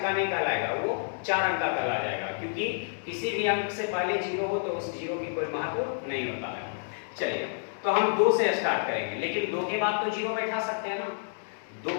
का नहीं कहलाएगा, वो 4 अंक का कहला जाएगा, क्योंकि किसी भी अंक से पहले 0 हो तो उस 0 की कोई महत्व नहीं होता है। चलिए तो हम 2 से स्टार्ट करेंगे, लेकिन 2 के बाद तो 0 बैठा सकते हैं ना। 2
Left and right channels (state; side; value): silent; right; digital silence